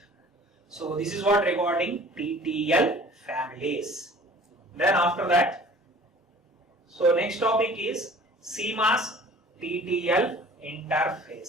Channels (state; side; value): normal; both; correlation 0.48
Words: So this is what regarding TTL families. Then after that, so next topic is CMOS TTL